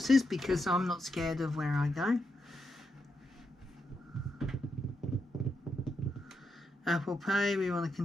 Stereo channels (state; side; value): normal; both; correlation 0.83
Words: because I'm not scared of where I go. Apple Pay, we want to